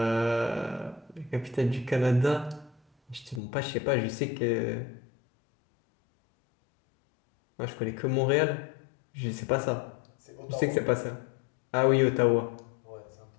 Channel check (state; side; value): drops out; right; at 3.4 s